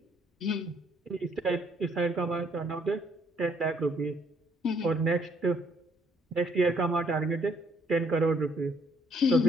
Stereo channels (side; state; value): both; normal; correlation 0.66